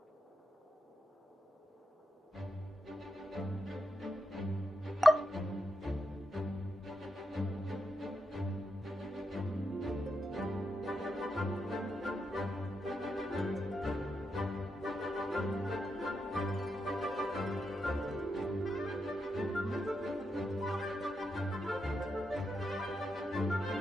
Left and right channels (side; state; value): both; normal; correlation 0.85